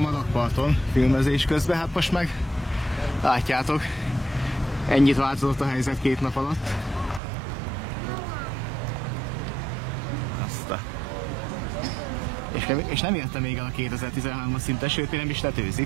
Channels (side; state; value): left; drops out; at 7.2 s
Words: a rakparton filmezés közben, hát most meg látjátok, ennyit változott a helyzet 2 nap alatt. Aztán. És nem érte még el a 2013-as szintet, sőt, még nem is